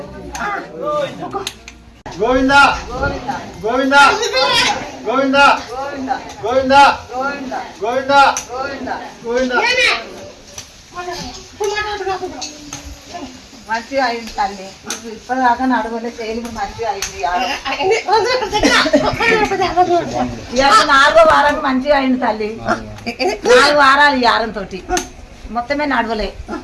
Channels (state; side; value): identical; both; correlation 1.00